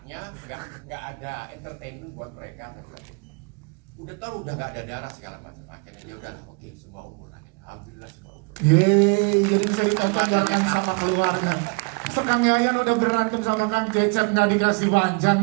nggak ada entertainment buat mereka. Udah tahu udah nggak ada darah segala macam. Akhirnya ya udah oke, semua umur akhirnya. Alhamdulillah semua umur. Yeay, jadi bisa ditonton bareng sama keluarga. Kang Yayan udah berantem sama Kang Cecep nggak dikasih panjang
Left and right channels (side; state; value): left; quieter; 32.2 dB